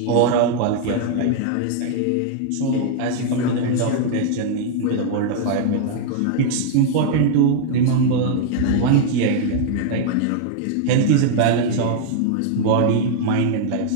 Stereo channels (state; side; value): different; both; correlation 0.00